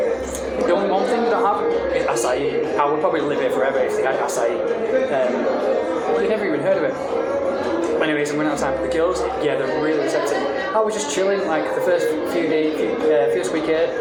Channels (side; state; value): both; identical; correlation 1.00